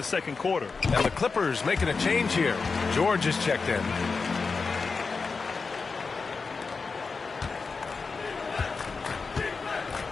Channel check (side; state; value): right; quieter; 4.6 dB